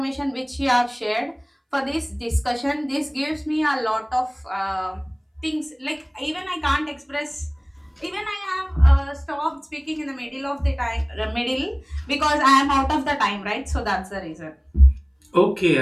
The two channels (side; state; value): both; identical; correlation 1.00